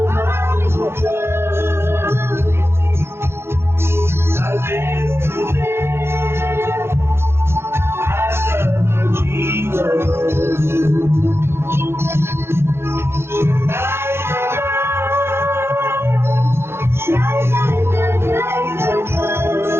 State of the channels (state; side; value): late; left; 0.12 ms